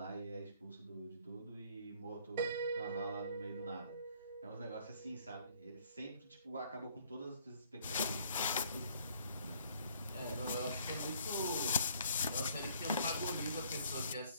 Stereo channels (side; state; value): both; inverted; correlation -0.61